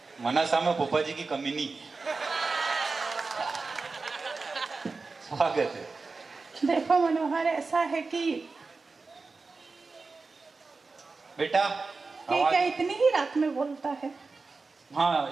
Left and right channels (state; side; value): quieter; left; 4.1 dB